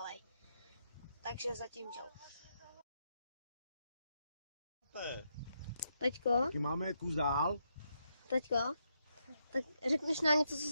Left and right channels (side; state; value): both; inverted; correlation -0.80